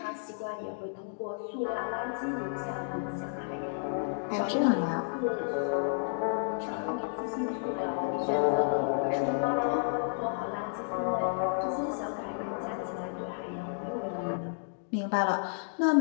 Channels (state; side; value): silent; right; digital silence